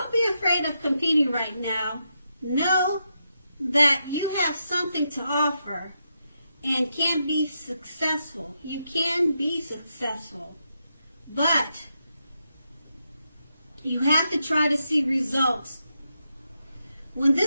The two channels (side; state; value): both; inverted; correlation -0.84